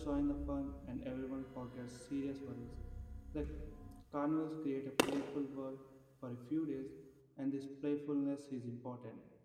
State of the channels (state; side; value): identical; both; correlation 1.00